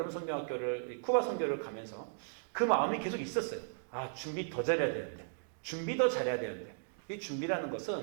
선교학교를, 쿠바 선교를 가면서 그 마음이 계속 있었어요. 준비 더 잘해야 되는데, 준비 더 잘해야 되는데. 이 준비라는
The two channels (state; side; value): silent; left; digital silence